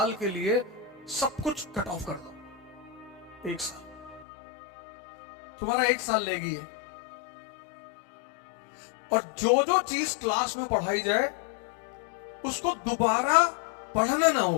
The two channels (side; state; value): right; drops out; at 4.2 s